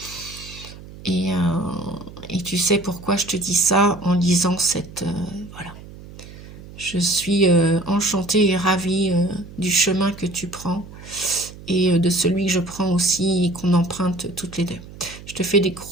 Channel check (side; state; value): right; noise; hum, 17 dB below the sound